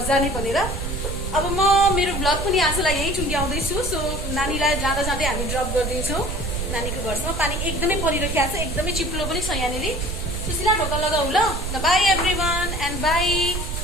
जाने भनेर। अब म मेरो भ्लग पनि आजलाई यही टुङ्ग्याउँदैछु। सो नानीलाई जाँदा जाँदै हामी ड्रप गरिदिन्छौँ नानीको घरसम्म। पानी एकदमै परिरहेको छ, एकदमै चिप्लो पनि छ यहाँनिर। सुशीला ढोका लगाऊ ल। By every one and by.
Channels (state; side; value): noise; right; rumble, 4 dB below the sound